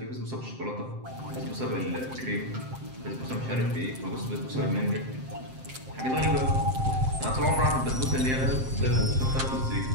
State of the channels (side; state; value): left; late; 7.7 ms